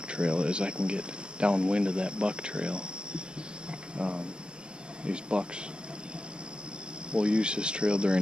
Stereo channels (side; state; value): left; late; 0.050 ms